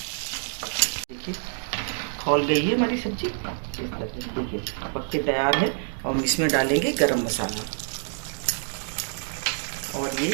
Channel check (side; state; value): left; silent; 60 dB below the other